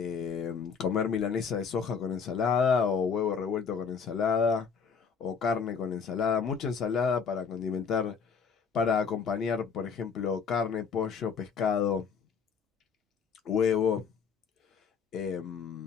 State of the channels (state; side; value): quieter; right; 6.1 dB